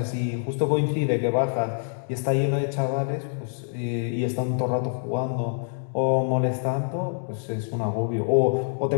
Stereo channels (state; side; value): silent; right; digital silence